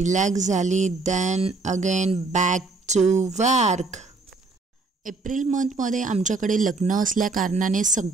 झाली. Then again back to work. April मंथमध्ये आमच्याकडे लग्न असल्या कारणाने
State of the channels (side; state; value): left; quieter; 3.7 dB